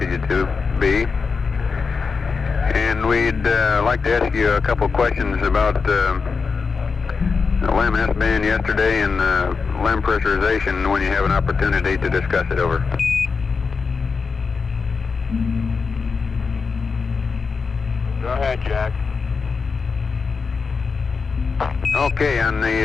you to be. And we'd like to ask you a couple questions about LEM S-band yesterday and LEM pressurization when you have an opportunity to discuss it, over. Go ahead, Jack. Okay, on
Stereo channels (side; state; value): right; quieter; 5.0 dB